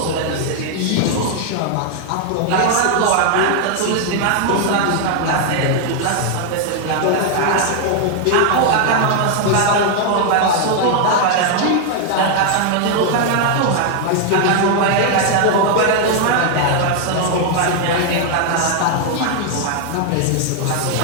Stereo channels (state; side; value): different; both; correlation 0.00